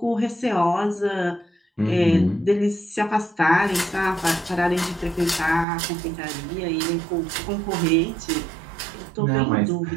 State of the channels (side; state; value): left; drops out; at 5.7 s